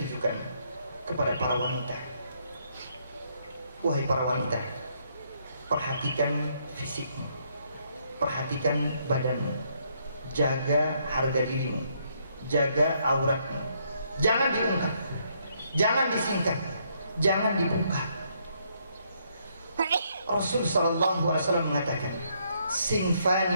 kepada para wanita. Wahai para wanita, perhatikan fisikmu, perhatikan badanmu, jaga harga dirimu, jaga auratmu. Jangan diungkap, jangan disingkat, jangan dibuka. Rasul sallallahu alaihi wasallam mengatakan,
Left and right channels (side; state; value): both; inverted; correlation -0.72